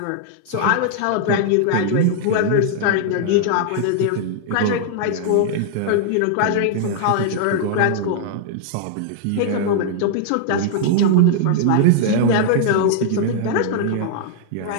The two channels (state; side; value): different; both; correlation -0.01